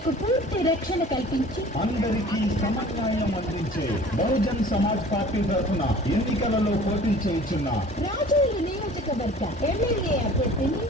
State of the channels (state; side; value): normal; both; correlation 0.46